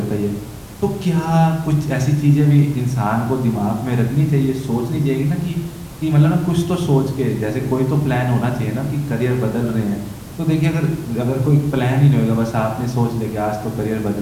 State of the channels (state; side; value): identical; both; correlation 1.00